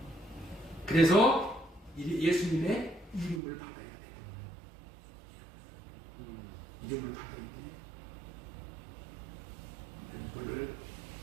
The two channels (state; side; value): drops out; left; at 3.4 s